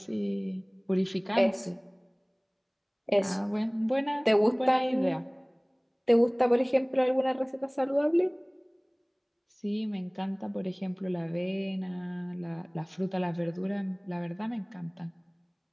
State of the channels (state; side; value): identical; both; correlation 1.00